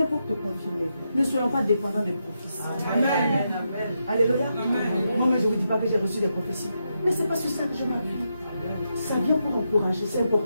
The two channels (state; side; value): inverted; both; correlation -0.84